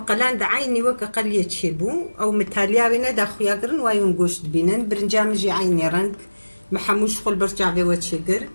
دعيني وكا قلية شيبو أو متاليا بينا دا خويا قرن وايون قوشت بينن برنجام جي عيني رنك محموش خل برجع في واتشيقر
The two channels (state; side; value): inverted; both; correlation -1.00